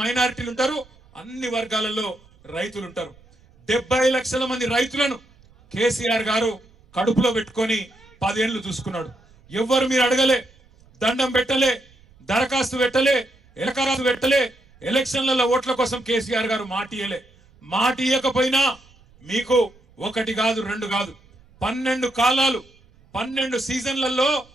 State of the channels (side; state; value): right; noise; rumble, 29 dB below the sound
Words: మైనారిటీలు ఉంటారు, అన్ని వర్గాలలో రైతులు ఉంటారు. 70 లక్షల మంది రైతులను కేసీఆర్ గారు కడుపులో పెట్టుకొని 10 ఏళ్లు చూసుకున్నాడు. ఎవ్వరు మీరు అడగలే, దండం పెట్టలే, దరఖాస్తు పెట్టలే, ఎలకరాసు పెట్టలే, ఎలక్షన్లలో ఓట్ల కోసం కేసీఆర్ గారు మాట ఇయ్యకపోయినా మీకు 1 కాదు 2 కాదు 12 కాలాలు 12 సీజన్లలో